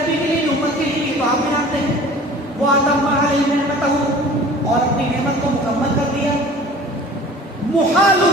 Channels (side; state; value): both; normal; correlation 0.44